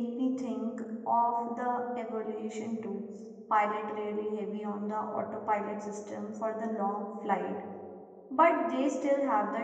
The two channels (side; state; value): both; identical; correlation 1.00